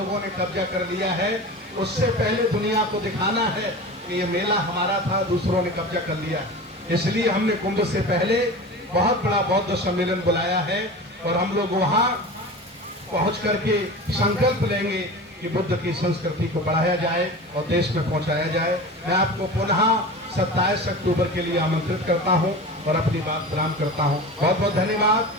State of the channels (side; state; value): both; normal; correlation 0.32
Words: ने कब्जा कर लिया है, उससे पहले दुनिया को दिखाना है कि ये मेला हमारा था, दूसरों ने कब्जा कर लिया। इसलिए हमने कुंभ से पहले बहुत बड़ा बौद्ध सम्मेलन बुलाया है और हम लोग वहां पहुंच करके संकल्प लेंगे कि बुद्ध की संस्कृति को बढ़ाया जाए और देश में पहुंचाया जाए। मैं आपको पुनः 27 अक्टूबर के लिए आमंत्रित करता हूं और अपनी बात विराम करता हूं। बहुत बहुत धन्यवाद,